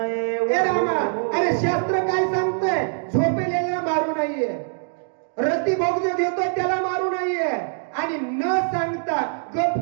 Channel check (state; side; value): silent; left; digital silence